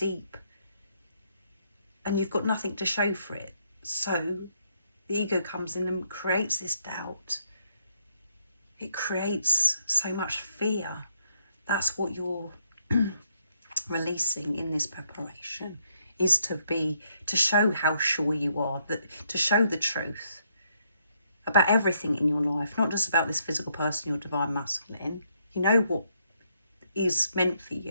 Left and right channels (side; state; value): both; inverted; correlation -0.73